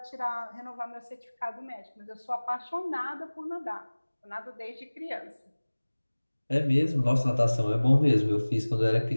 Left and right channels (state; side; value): inverted; both; correlation -1.00